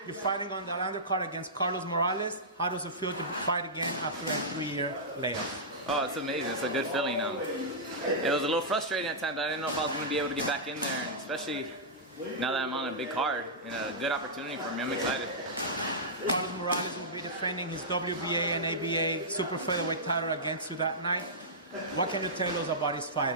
you're fighting on the undercard against Carlos Morales. How does it feel to fight again after a 3-year layoff? Oh, it's amazing. It's a good feeling. It was a little frustrating at times. I didn't know if I was going to be able to get back in there, and especially now that I'm on a big card. A good opportunity for me. I'm excited. Carlos Morales will be defending his WBA and ABA super featherweight title against you that night. What can you tell us about his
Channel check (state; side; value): normal; both; correlation -0.13